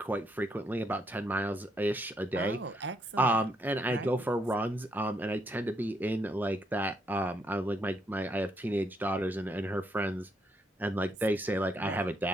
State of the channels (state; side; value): normal; both; correlation 0.75